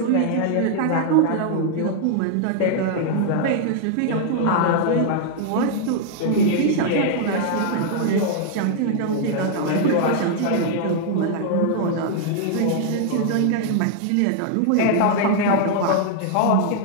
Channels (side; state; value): both; different; correlation -0.01